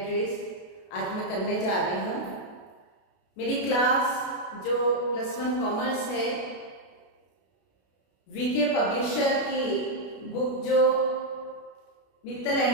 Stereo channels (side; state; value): right; late; 32 ms